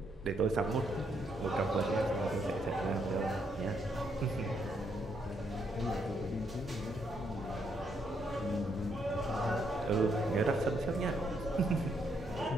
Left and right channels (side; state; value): both; normal; correlation 0.75